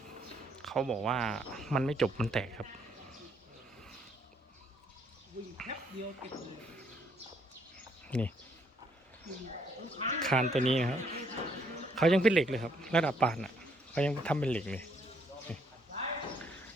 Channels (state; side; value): normal; both; correlation 0.69